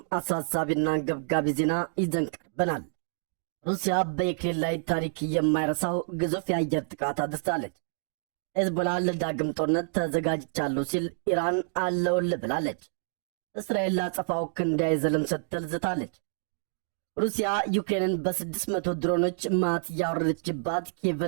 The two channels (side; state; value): left; silent; digital silence